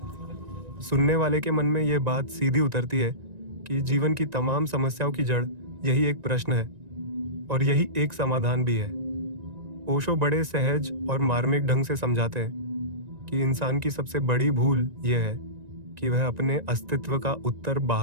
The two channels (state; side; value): late; left; 1.9 ms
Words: सुनने वाले के मन में यह बात सीधी उतरती है कि जीवन की तमाम समस्याओं की जड़ यही एक प्रश्न है और यही एक समाधान भी है। ओशो बड़े सहज और मार्मिक ढंग से समझाते हैं कि इंसान की सबसे बड़ी भूल यह है कि वह अपने अस्तित्व का उत्तर